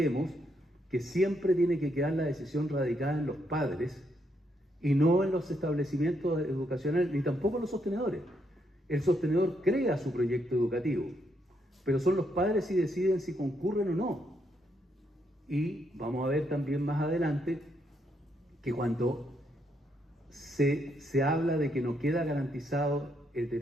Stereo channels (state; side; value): normal; both; correlation 0.77